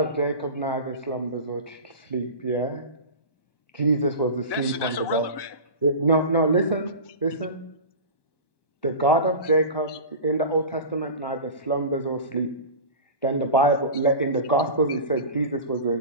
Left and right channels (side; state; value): right; late; 1.2 ms